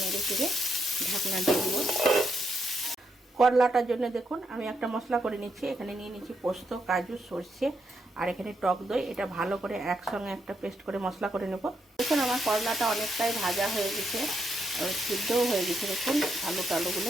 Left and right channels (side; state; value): both; normal; correlation 0.80